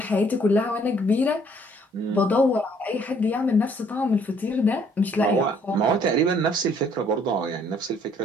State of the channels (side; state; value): both; normal; correlation 0.63